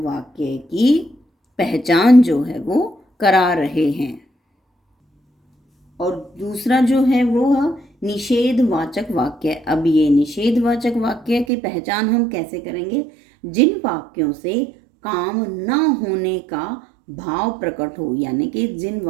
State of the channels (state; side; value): drops out; left; at 11.5 s